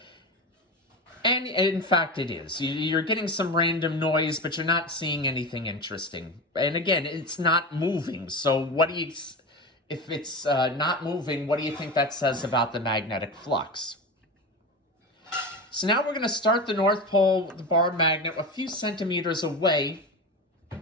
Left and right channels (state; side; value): normal; both; correlation 0.24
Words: And in fact it is. You're getting some random noise, but you're not seeing anything interesting. And again, it's not moving, so if it's not moving, what do you think that says about the magnetic flux? So now we're going to start the north pole, the bar magnet, a few centimeters away